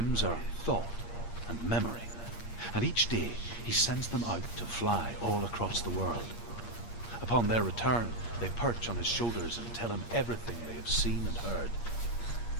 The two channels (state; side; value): late; right; 8.6 ms